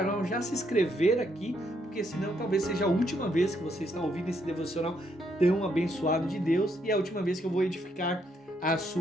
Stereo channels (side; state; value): both; normal; correlation 0.75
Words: já se inscrever aqui, porque senão talvez seja a última vez que você está ouvindo esse devocional tão abençoado de Deus e a última vez que eu vou edificar a